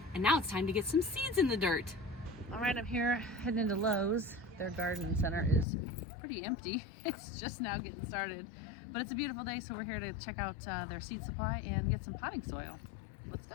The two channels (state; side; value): drops out; right; at 5.7 s